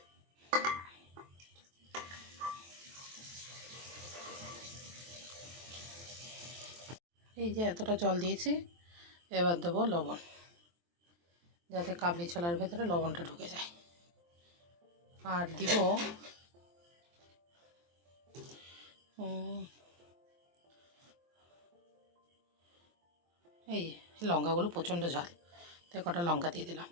এই যে এতটা জল দিয়েছি, এবার দেবো লবণ, যাতে কাবলি ছোলার ভেতরে লবণটা ঢুকে যায়। আর দিব এই লঙ্কাগুলো প্রচণ্ড ঝাল, তাই কটা লঙ্কা দিয়ে দিলাম।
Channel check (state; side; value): late; left; 23 ms